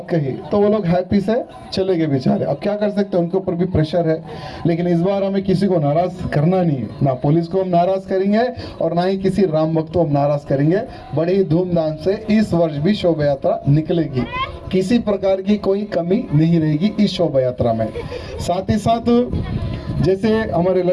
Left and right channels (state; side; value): identical; both; correlation 1.00